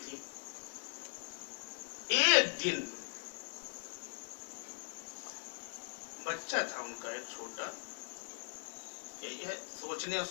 एक दिन बच्चा था उनका एक छोटा। यही है, सोचने और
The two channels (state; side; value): silent; right; 51 dB below the other